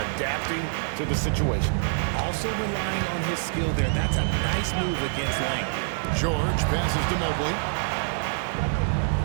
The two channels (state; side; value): silent; left; digital silence